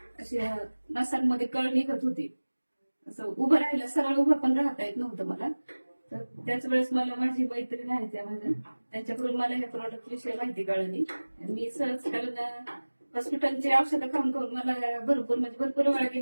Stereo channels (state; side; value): inverted; both; correlation -1.00